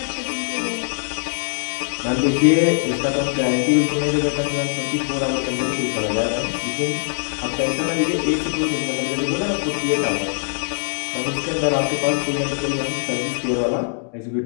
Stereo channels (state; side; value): silent; right; 64 dB below the other